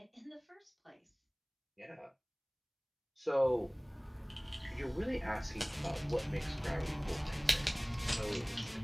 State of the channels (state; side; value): identical; both; correlation 1.00